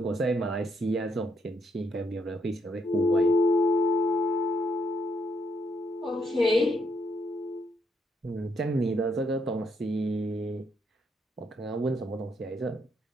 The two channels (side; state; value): both; normal; correlation 0.75